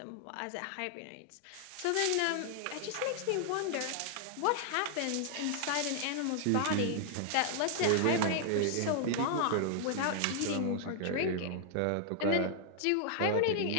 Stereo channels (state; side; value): different; both; correlation -0.01